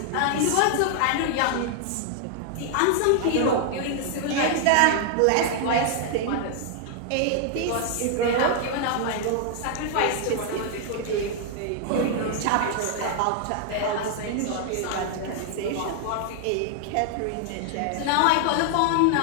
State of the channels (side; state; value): both; different; correlation 0.00